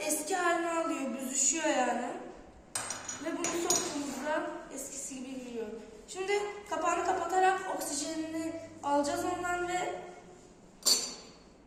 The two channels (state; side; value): identical; both; correlation 1.00